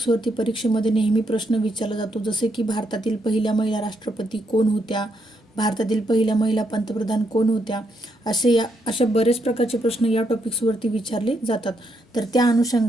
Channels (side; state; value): both; normal; correlation 0.77